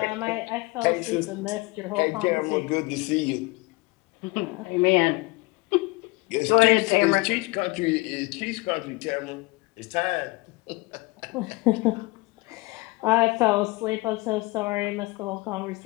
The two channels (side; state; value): right; quieter; 24.1 dB